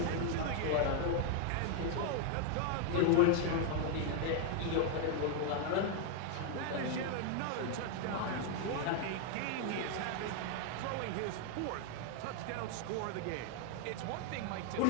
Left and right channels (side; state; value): both; different; correlation 0.00